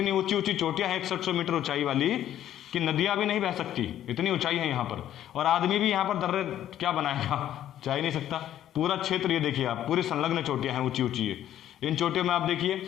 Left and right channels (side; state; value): right; quieter; 11.6 dB